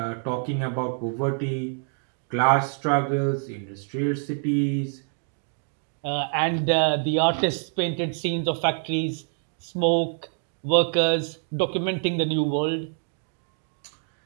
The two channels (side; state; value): left; silent; 60 dB below the other